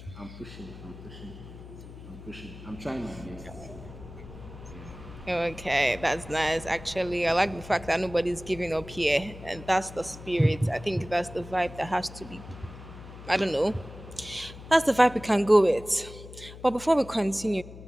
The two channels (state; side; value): noise; left; hum, 15 dB below the sound